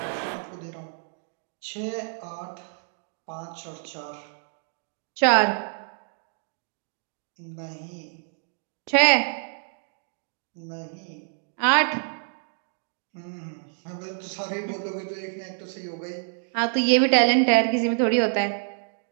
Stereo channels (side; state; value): left; silent; digital silence